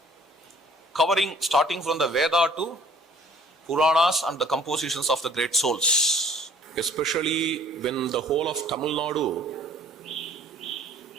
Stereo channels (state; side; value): normal; both; correlation 0.55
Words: covering starting from the Veda to Puranas and the compositions of the great souls. Especially when the whole of Tamil Nadu